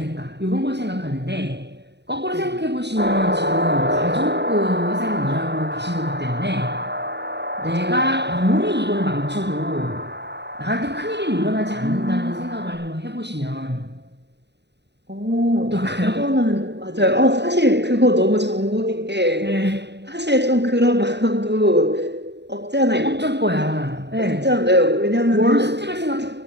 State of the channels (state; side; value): late; left; 0.50 ms